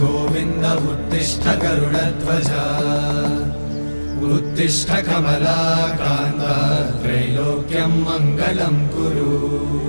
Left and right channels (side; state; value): both; inverted; correlation -1.00